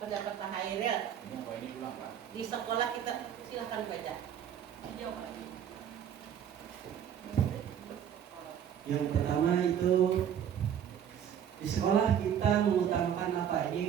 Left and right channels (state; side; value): quieter; left; 9.2 dB